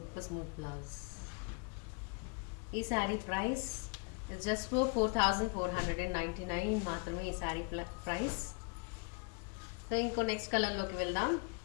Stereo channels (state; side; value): quieter; right; 35.4 dB